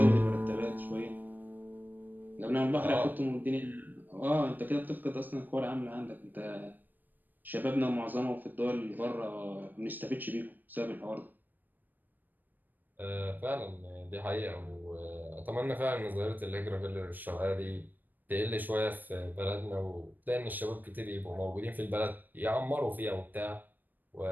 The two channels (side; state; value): left; late; 0.089 ms